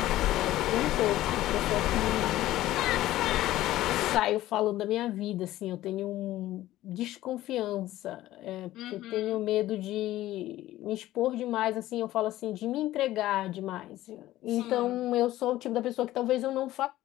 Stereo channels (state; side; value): quieter; right; 15.2 dB